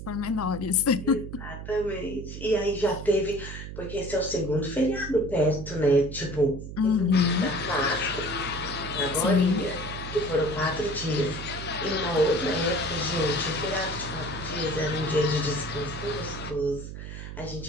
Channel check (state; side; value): noise; right; hum, 9 dB below the sound